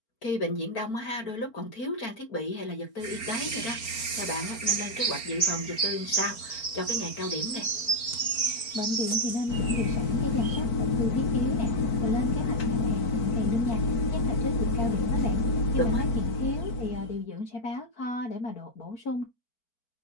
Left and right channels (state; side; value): late; right; 4.3 ms